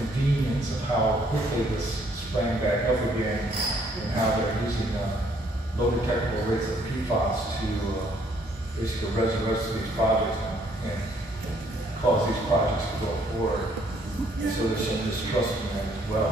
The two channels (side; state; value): both; normal; correlation 0.66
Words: of how quickly this sprang back up again, and how they're using low detectable rates of PFAS to basically resurrect these projects and cause these projects to go forward. So there's some distrust in that as